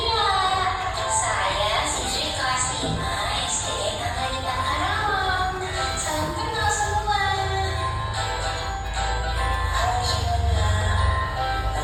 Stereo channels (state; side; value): identical; both; correlation 1.00